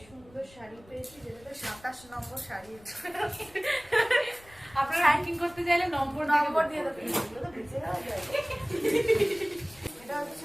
সুন্দর শাড়ি পেয়েছি, যেটা 27 নম্বর শাড়ি। আপনারা র্যাঙ্কিং করতে চাইলে নম্বর দিয়ে দেবেন, এগুলো তো বেঁচে যাওয়া যায়। এটা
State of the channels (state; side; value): noise; left; rumble, 25 dB below the sound